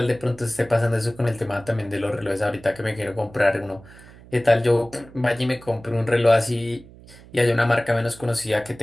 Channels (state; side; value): noise; right; hum, 21 dB below the sound